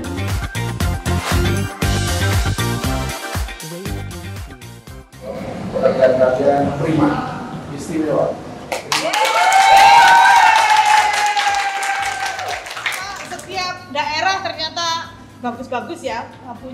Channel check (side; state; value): both; identical; correlation 1.00